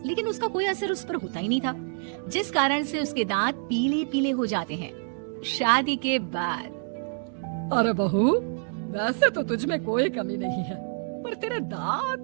लेकिन उसका कोई असर उस पर होता ही नहीं था, जिस कारण से उसके दांत पीले पीले हो जाते हैं। शादी के बाद। अरे बहू, वैसे तो तुझ में कोई कमी नहीं है, पर तेरे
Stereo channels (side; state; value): left; silent; 58 dB below the other